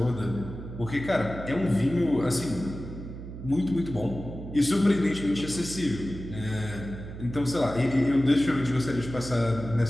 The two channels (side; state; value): right; noise; hum, 11 dB below the sound